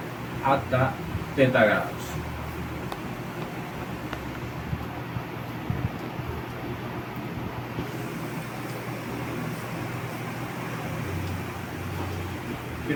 hasta θ grados.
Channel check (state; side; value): identical; both; correlation 1.00